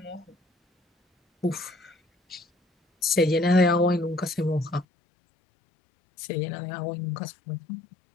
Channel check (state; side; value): drops out; right; at 4.9 s